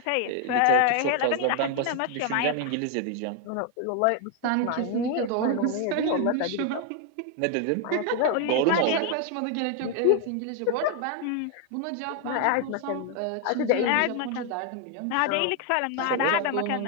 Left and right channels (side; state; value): both; different; correlation 0.01